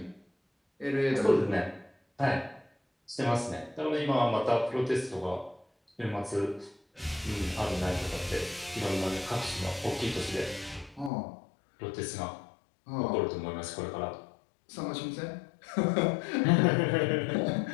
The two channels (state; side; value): drops out; right; at 11.1 s